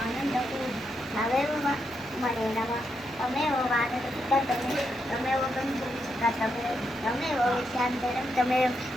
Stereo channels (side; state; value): both; normal; correlation 0.82